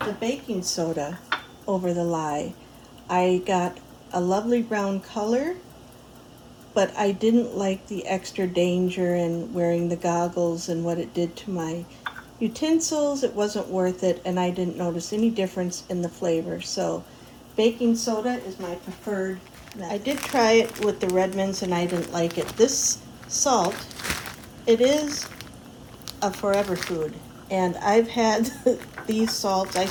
the baking soda over the lye. I got a lovely brown color, but I didn't like the extra danger in wearing the goggles and what it did to my utensils. It wasn't worth it, and I didn't notice any difference in the flavor. So baking soda is my preferred method. I did try it with the Redmonds and I didn't like it. This salt, it is a forever food, and I've had these salts. I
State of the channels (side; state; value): both; identical; correlation 1.00